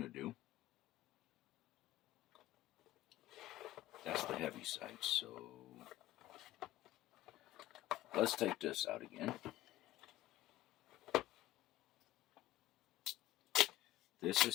to do, that's the heavy side, so let's take this out again. This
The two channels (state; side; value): quieter; right; 15.2 dB